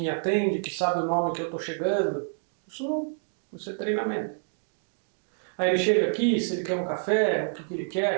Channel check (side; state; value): left; silent; digital silence